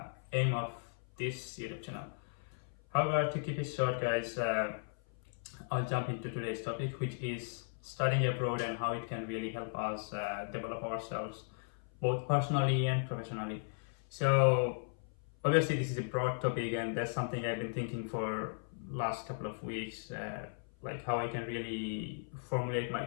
aim of this YouTube channel. However, to keep it short, guys, I'll jump into today's topic, which is studying abroad and how it can really help us develop ourselves both personally and professionally. So obviously this is a broad topic, and that's something I've been thinking for last couple of weeks, like how I can really formulate my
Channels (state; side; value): silent; right; 53 dB below the other